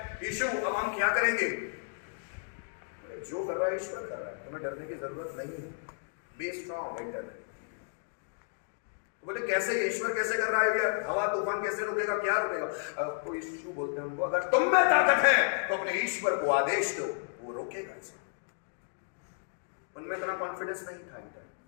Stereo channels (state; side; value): silent; right; digital silence